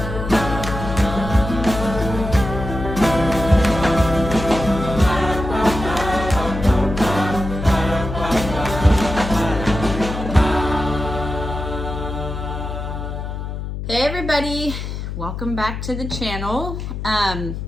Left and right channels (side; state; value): left; noise; hum, 6 dB below the sound